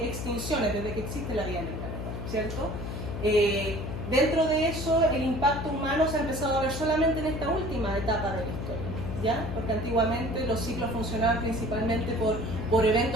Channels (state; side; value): noise; left; hum, 5 dB below the sound